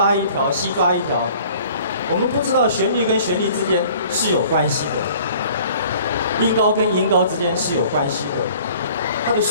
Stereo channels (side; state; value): both; inverted; correlation -0.51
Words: 一条，西抓一条，我们不知道旋律跟旋律之间是有关系的，音高跟音高之间是有关系的，它的